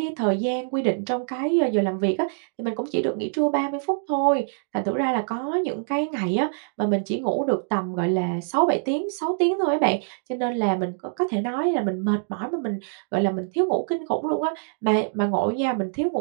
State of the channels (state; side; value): silent; left; digital silence